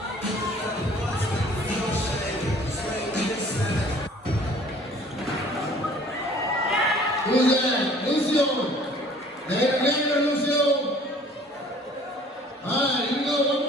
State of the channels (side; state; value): both; normal; correlation 0.52